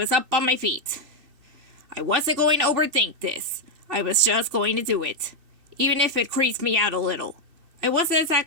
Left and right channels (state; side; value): late; left; 2.7 ms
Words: up on my feet. I wasn't going to overthink this. I was just going to do it, even if it creased me out a little. I wasn't